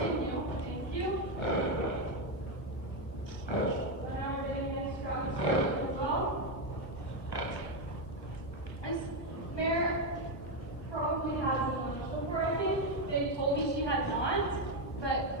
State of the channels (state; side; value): late; right; 1.1 ms